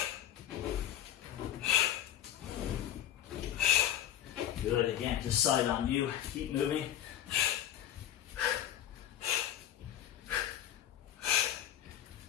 Good, again, just side on you, keep moving.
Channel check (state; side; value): quieter; right; 11.3 dB